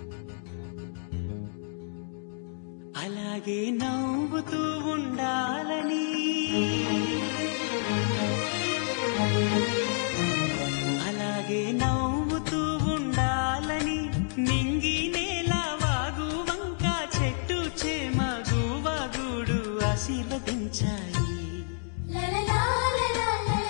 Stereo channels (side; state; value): right; silent; digital silence